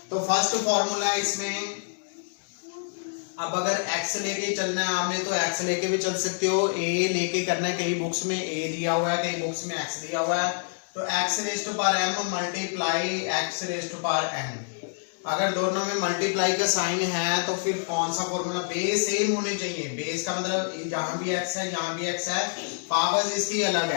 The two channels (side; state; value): right; silent; digital silence